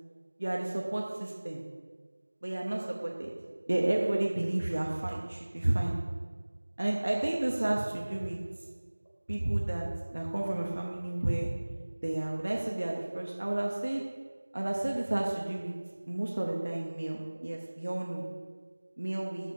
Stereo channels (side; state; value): both; inverted; correlation -1.00